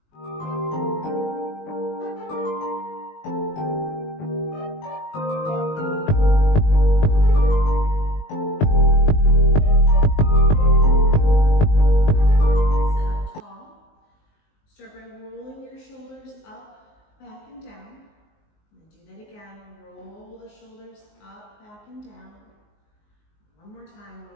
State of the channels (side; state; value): right; late; 19 ms